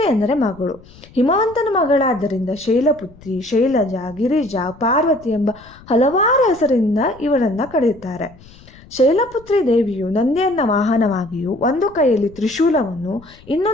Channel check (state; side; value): noise; left; rumble, 23 dB below the sound